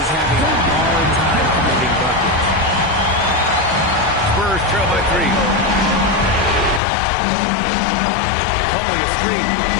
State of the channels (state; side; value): drops out; right; at 6.8 s